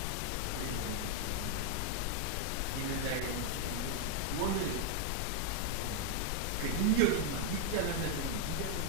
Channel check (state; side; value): different; both; correlation 0.00